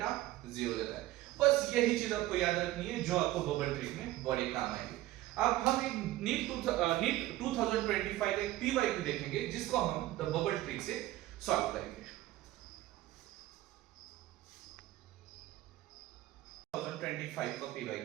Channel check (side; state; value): left; quieter; 16.1 dB